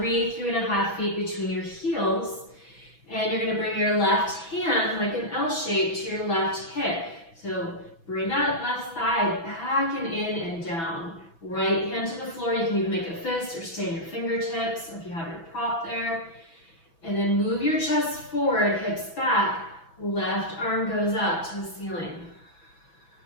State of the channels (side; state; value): right; late; 6.0 ms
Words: feet between your heels. And you're gonna bring your left hand, like an L shape, to your left hip. So bring that left thigh back and in and down. Right hand to the floor. You can even make a fist or stay in your fingertips if you have your prop there. And then move your chest forward, hips back. Left arm goes up to the ceiling.